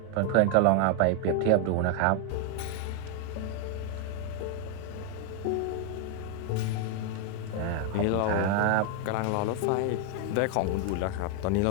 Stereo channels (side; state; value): both; different; correlation 0.00